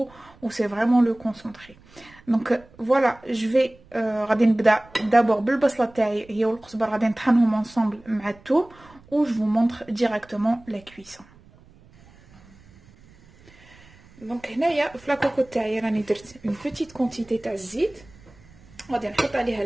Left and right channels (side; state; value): right; noise; rumble, 26 dB below the sound